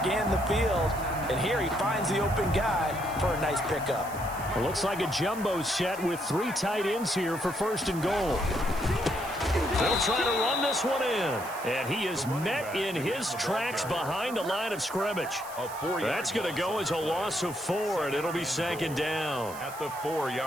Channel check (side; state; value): right; noise; hiss, 15 dB below the sound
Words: the field. And here he finds the open guy for a nice pickup. It looks like a jumbo set with 3 tight ends here for 1st and goal. They'll try to run this one in. And he is met in his tracks behind the line of scrimmage. That's going to go as a loss of 4, and it'll be 2nd down. At the